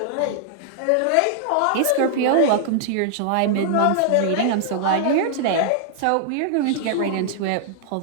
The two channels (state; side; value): different; both; correlation -0.01